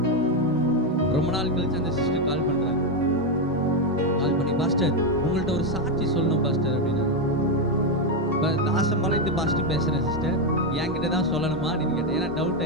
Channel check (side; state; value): both; normal; correlation 0.06